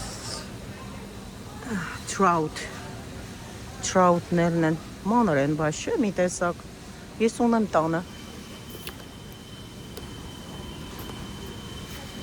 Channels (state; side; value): identical; both; correlation 1.00